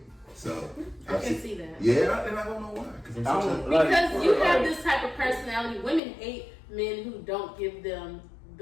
So I can see that. Yeah, and I don't know why. Because you have this type of personality. Women hate men who don't give them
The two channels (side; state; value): right; drops out; at 6.0 s